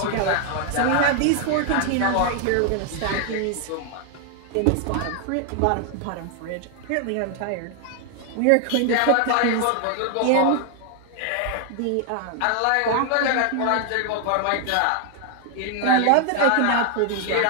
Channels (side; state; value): both; different; correlation 0.00